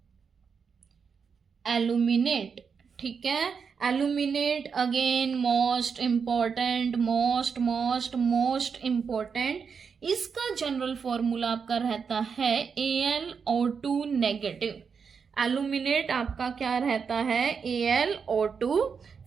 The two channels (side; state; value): left; quieter; 6.0 dB